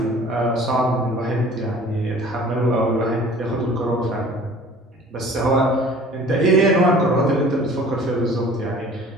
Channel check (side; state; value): both; normal; correlation 0.48